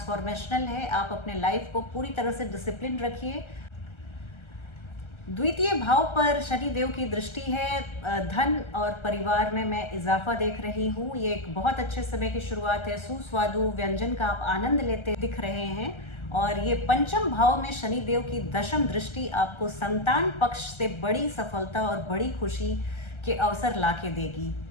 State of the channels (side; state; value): right; late; 1.3 ms